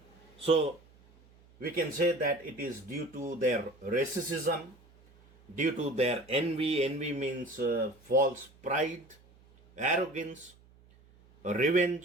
So we can say that it is due to their racism, due to their envy. Envy means false pride, arrogance,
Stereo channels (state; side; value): noise; right; hum, 27 dB below the sound